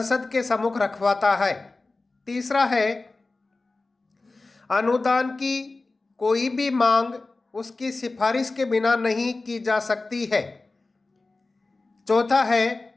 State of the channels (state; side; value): quieter; right; 3.4 dB